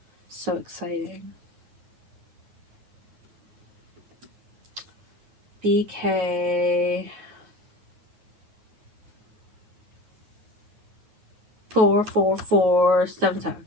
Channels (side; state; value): left; late; 9.6 ms